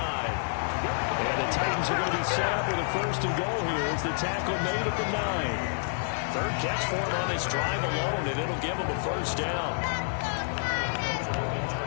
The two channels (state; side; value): silent; right; digital silence